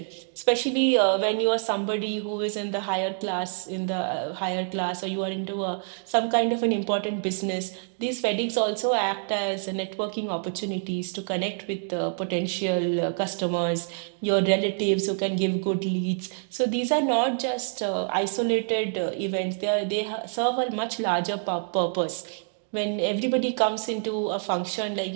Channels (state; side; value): silent; left; 60 dB below the other